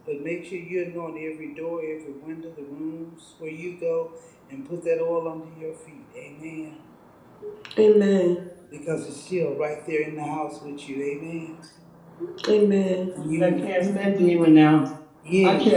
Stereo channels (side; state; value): both; identical; correlation 1.00